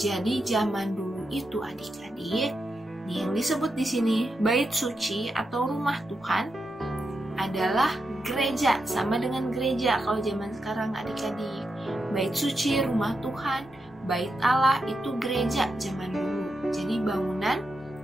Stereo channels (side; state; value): both; normal; correlation 0.86